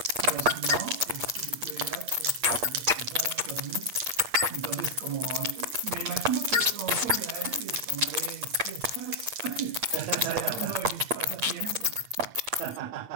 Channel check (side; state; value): left; late; 8.5 ms